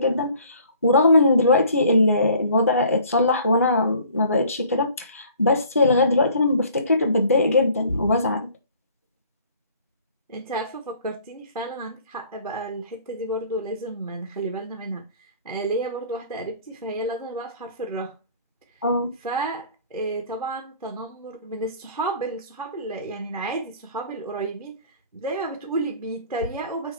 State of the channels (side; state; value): both; inverted; correlation -0.53